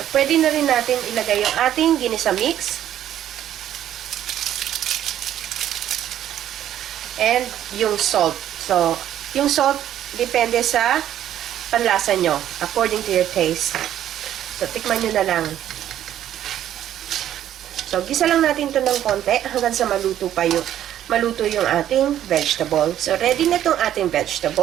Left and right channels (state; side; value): quieter; left; 11.4 dB